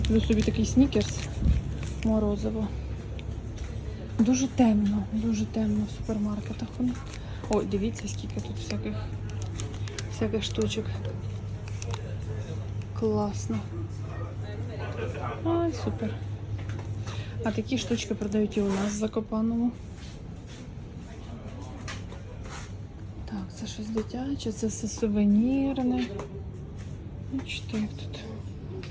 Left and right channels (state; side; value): identical; both; correlation 1.00